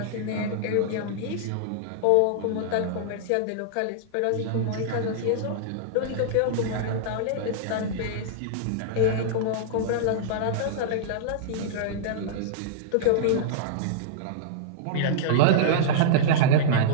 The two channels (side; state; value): both; different; correlation -0.02